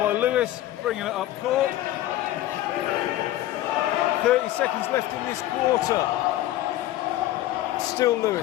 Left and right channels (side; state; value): right; quieter; 14.6 dB